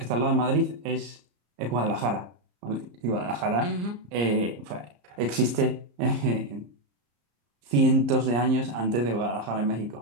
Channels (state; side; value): late; left; 34 ms